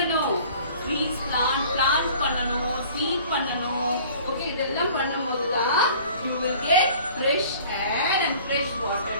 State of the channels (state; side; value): inverted; both; correlation -0.49